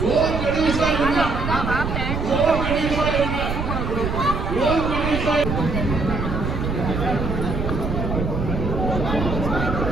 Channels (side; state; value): right; noise; rumble, 3 dB below the sound